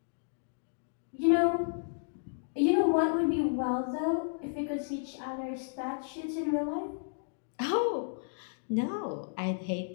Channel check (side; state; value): right; silent; digital silence